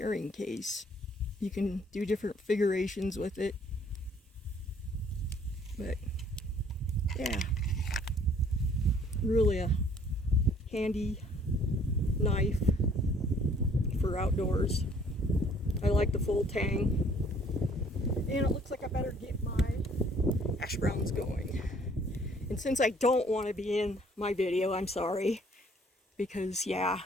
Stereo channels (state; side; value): normal; both; correlation 0.59